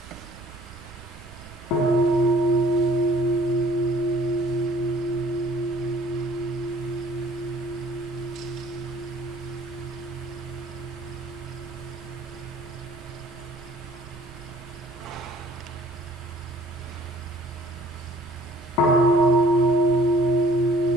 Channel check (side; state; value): right; noise; rumble, 19 dB below the sound